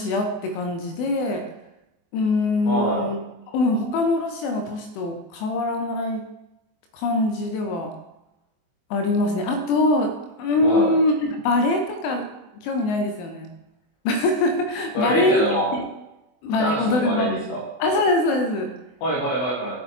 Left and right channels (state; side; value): late; right; 24 ms